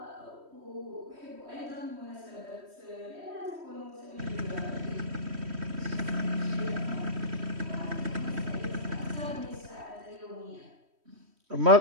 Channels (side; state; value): left; late; 3.1 ms